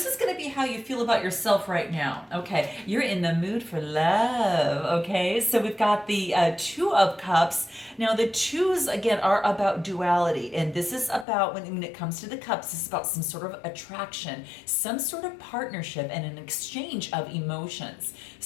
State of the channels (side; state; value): right; drops out; at 11.2 s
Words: is going to be how you feel about yourself right now. Okay, you're in the mood for love. Okay, so we've got the Two of Cups. Now, the twos, again, are about duality. And this is about, when it comes to the cups, this is about some sort of attraction, some sort of partnership, and an exchange of emotions.